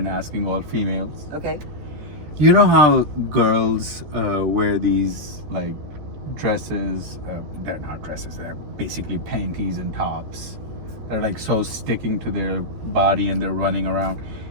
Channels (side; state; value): left; late; 14 ms